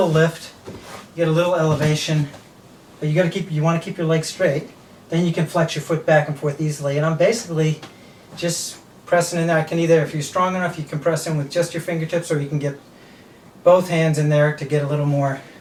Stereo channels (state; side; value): identical; both; correlation 1.00